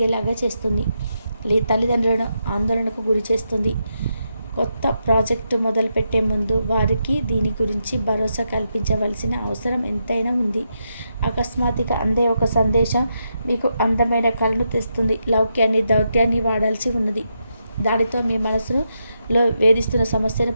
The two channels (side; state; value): both; inverted; correlation -0.83